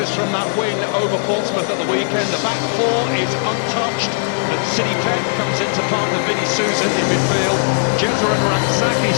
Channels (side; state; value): right; silent; 59 dB below the other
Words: from that win over Portsmouth at the weekend. The back 4 is untouched, but City Peck comes into partner Vinny Souza in midfield. Jesurun Raksaki